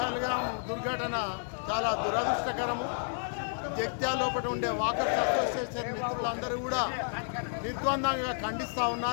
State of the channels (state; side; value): silent; right; 57 dB below the other